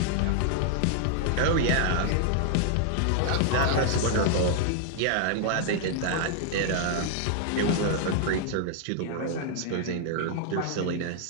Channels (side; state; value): both; different; correlation -0.01